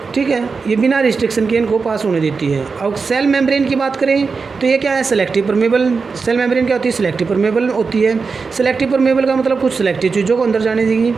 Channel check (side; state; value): left; quieter; 4.8 dB